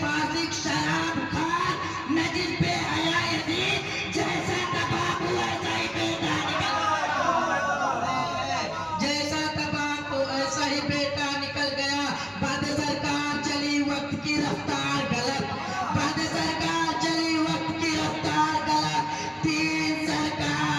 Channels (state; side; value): identical; both; correlation 1.00